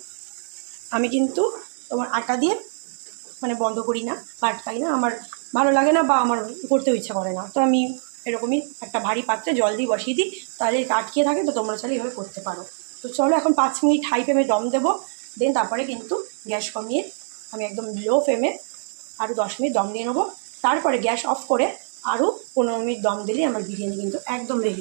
আমি কিন্তু তোমার আটা দিয়ে মানে বন্ধ করি না, পাটকাই না, আমার ভালো লাগে না বা আমার করতেও ইচ্ছা করে না। তো আমি এরকমই একটা ভারী পাত্রে জল দিয়ে বসিয়ে দিই, তাহলে এটা আটকিয়ে থাকে। তো তোমরা চাইলে এইভাবে করতে পারো। তো চলো এখন 5 মিনিট হাই ফ্লেমে দম দেবো, দেন তারপরে কিন্তু গ্যাস কমিয়ে আমি একদম লো ফ্লেমে আরও 10 মিনিট দম দিয়ে নেবো। তারপরে গ্যাস অফ করে আরও 15 মিনিট দম দিলে আমার বিরিয়ানি কিন্তু একদম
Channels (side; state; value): left; silent; digital silence